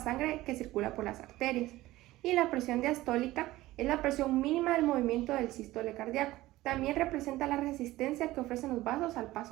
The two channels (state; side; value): quieter; left; 17.2 dB